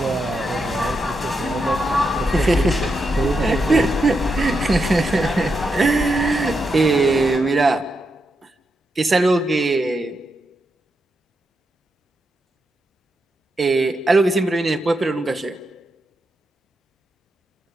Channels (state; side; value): normal; both; correlation 0.84